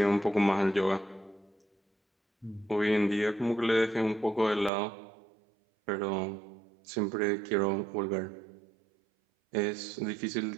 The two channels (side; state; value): left; drops out; at 4.7 s